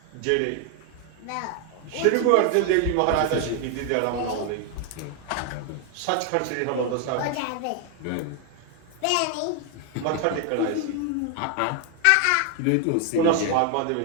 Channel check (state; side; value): different; both; correlation 0.00